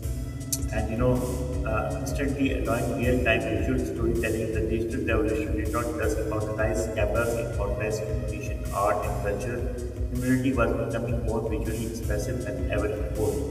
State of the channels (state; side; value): identical; both; correlation 1.00